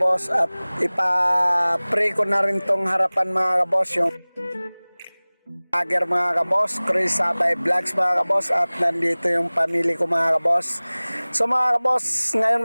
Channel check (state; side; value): inverted; both; correlation -1.00